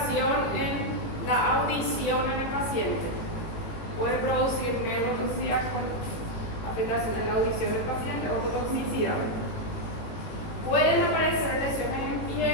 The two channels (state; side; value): late; right; 18 ms